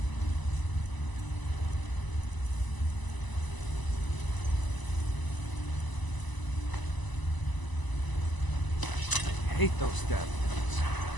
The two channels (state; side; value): late; right; 1.0 ms